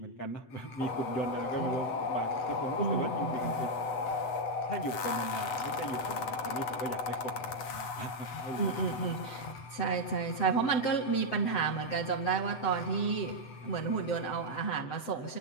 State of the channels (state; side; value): late; right; 7.9 ms